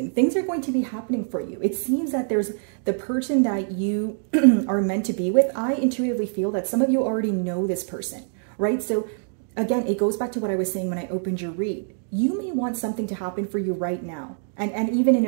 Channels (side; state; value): left; silent; digital silence